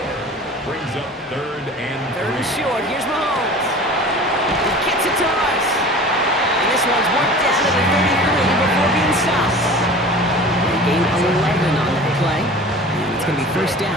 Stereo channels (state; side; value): normal; both; correlation 0.40